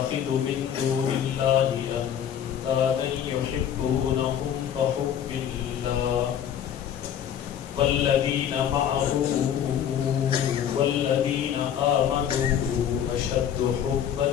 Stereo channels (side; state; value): right; quieter; 9.4 dB